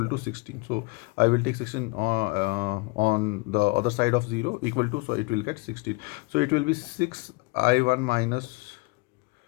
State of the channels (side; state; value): right; quieter; 27.1 dB